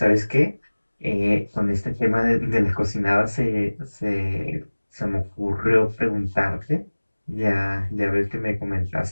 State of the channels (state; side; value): inverted; both; correlation -1.00